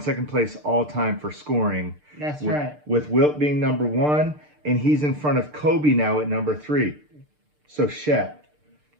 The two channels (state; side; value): late; left; 6.7 ms